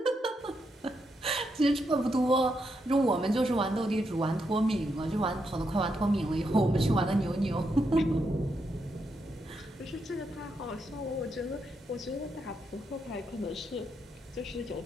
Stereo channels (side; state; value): both; normal; correlation 0.81